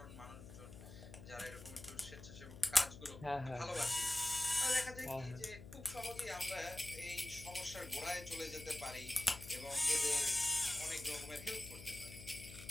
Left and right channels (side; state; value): left; noise; hum, 14 dB below the sound